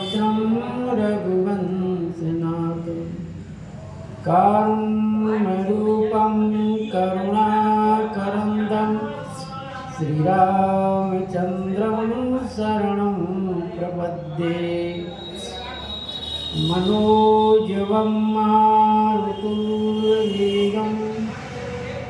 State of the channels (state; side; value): identical; both; correlation 1.00